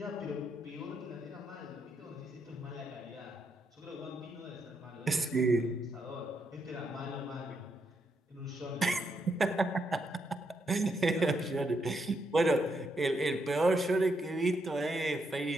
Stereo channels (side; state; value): both; normal; correlation 0.78